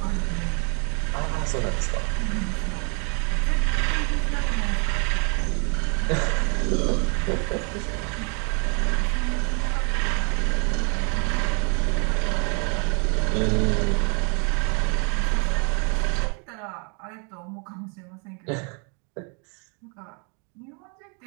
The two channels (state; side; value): quieter; left; 36.5 dB